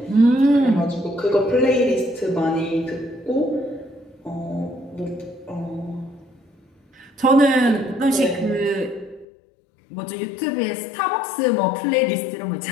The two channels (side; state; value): right; drops out; at 9.2 s